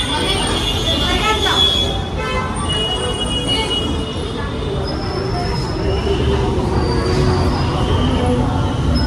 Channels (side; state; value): both; identical; correlation 1.00